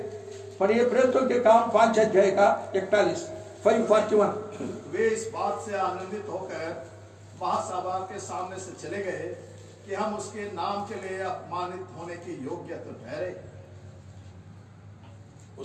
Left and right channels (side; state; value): both; identical; correlation 1.00